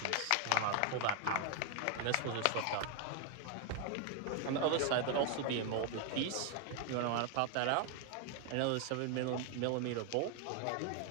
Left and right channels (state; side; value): different; both; correlation 0.00